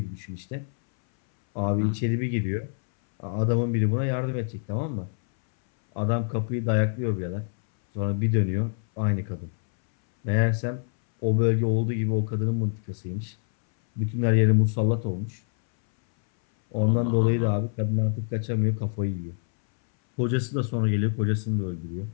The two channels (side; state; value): right; silent; 61 dB below the other